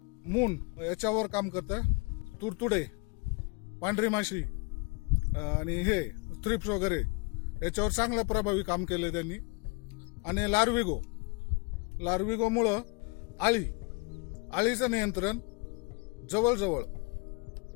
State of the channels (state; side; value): quieter; right; 30.7 dB